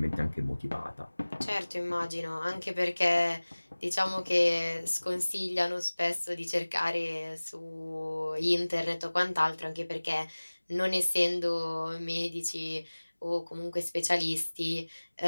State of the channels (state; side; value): inverted; both; correlation -1.00